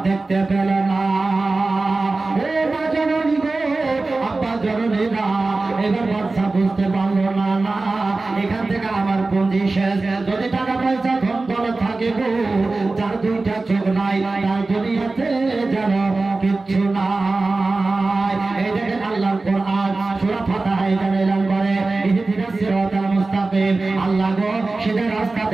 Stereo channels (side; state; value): left; quieter; 3.4 dB